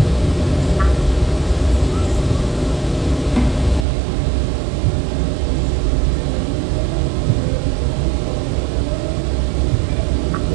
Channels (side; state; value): left; drops out; at 3.9 s